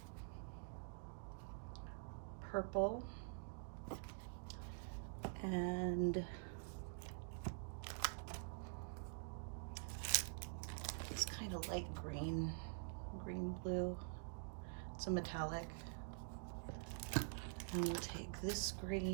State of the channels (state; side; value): silent; left; digital silence